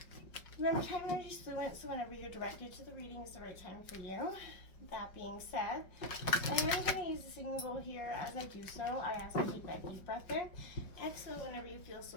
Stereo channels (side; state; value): right; late; 5.5 ms